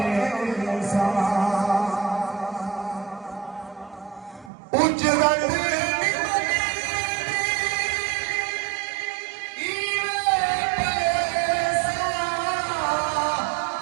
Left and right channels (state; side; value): drops out; left; at 4.5 s